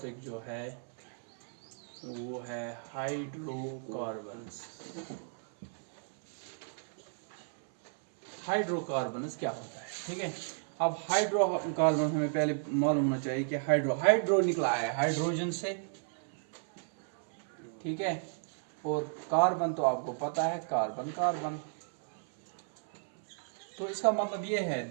जो है वो है हाइड्रोकार्बन्स। हाइड्रोकार्बन्स क्या होता है? ठीक है, अब हाइड्रोकार्बन हमें पहले मालूम होना चाहिए कि हाइड्रो निकला है हाइड्रोजन से। ठीक है, और कार्बन तो आपको पता है, कार्बन। तो इसका मतलब ये है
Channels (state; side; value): silent; left; 56 dB below the other